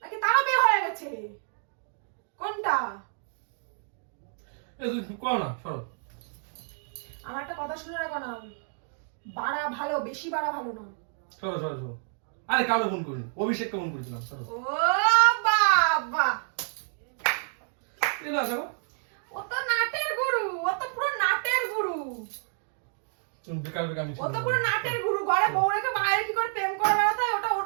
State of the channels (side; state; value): left; silent; 59 dB below the other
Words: নাকি তারও বিয়ে হয়ে গেছে? কোনটা? তুই কর না, সরো। আমার একটা কথা শুনে রাখো না, বাড়া ভালো, বেশি বাড়া ভালো না। সরো সরো সরো। আরে কাউকে ফোন করিনি, অভিষেককে ফোন করেছিলাম। সরো। ও বাবা, এই না সরো। ও তো নাটের গুরু, ও তো পুরো নাটের গুরু, তুমি বেকার বেকার আমি ও তো পুরো নাটের গুরু। ঘরে বউ রেখে বাইরে কি করে প্রেম করে বেড়াতে হয়, ওটা ওর